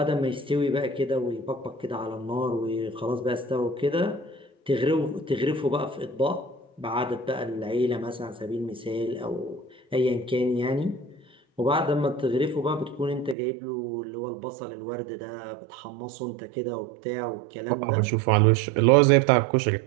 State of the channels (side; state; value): left; drops out; at 13.4 s